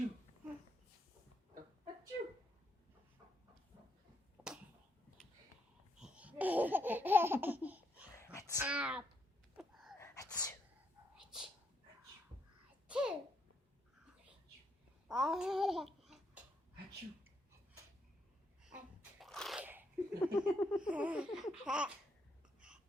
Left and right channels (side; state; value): both; normal; correlation 0.76